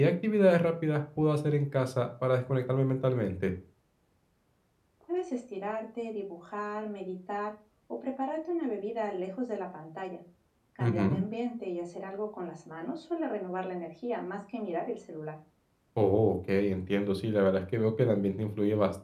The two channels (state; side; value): identical; both; correlation 1.00